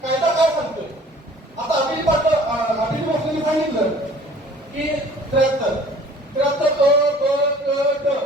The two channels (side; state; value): both; normal; correlation 0.50